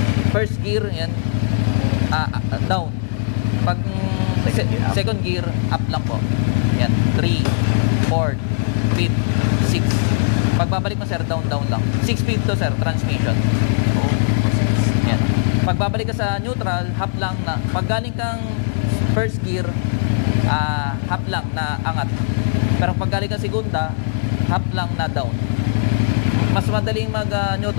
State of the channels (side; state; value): right; silent; digital silence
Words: First gear, yan. Down. Pag second gear, up lang po. Yan. 3, 4, 5, 6. Pagbabalik mo, sir, down lang. 6 speed to, sir, transmission. Yan. Pagbabalik ka sa neutral, half lang na. Pag galing kang first gear, half lang na angat. Pero pag galing kang segunda, half lang na down. Mas madaling